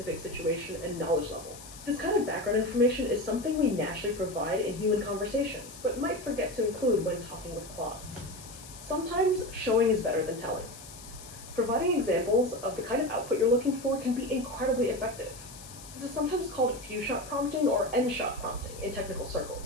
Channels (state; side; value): noise; left; hiss, 16 dB below the sound